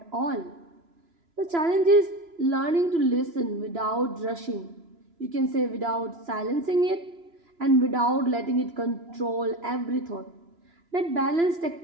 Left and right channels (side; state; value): left; late; 3.0 ms